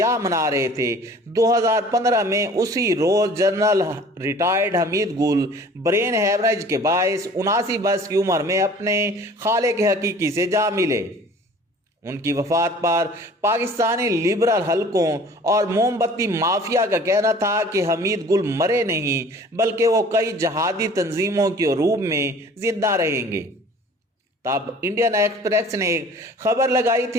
منا رہے تھے، 2015 میں اسی روز جنرل ریٹائرڈ حمید گل برین ہیمریج کے باعث 79 برس کی عمر میں اپنے خالق حقیقی سے جا ملے۔ ان کی وفات پر پاکستانی لبرل حلقوں اور موم بتی مافیا کا کہنا تھا کہ حمید گل مرے نہیں، بلکہ وہ کئی جہادی تنظیموں کے عروج میں زندہ رہیں گے۔ تب انڈین ایکسپریس نے ایک خبر لگائی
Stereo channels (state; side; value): normal; both; correlation 0.48